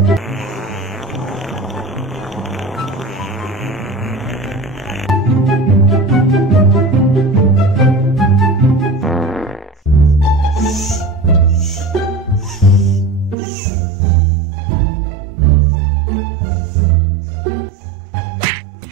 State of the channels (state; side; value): drops out; left; at 13.4 s